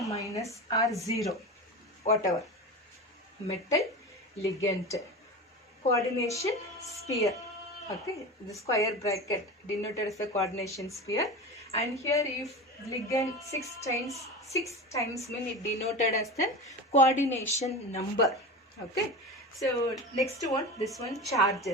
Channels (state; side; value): normal; both; correlation 0.28